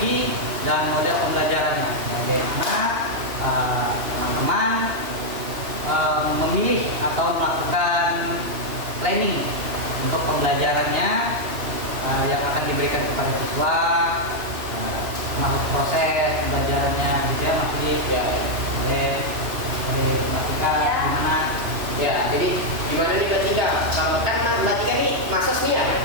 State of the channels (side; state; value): left; late; 3.0 ms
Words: dan model pembelajarannya. Bagaimana teman-teman memilih atau melakukan planning untuk pembelajarannya yang akan diberikan kepada siswa, termasuk proses pembelajarannya gitu ya Mas Dik. Ya, Dari Mbak Tika gimana? ya, jadi gimana nih Mbak Tika? Kalau kan Mbak Tika nih masas nih ya.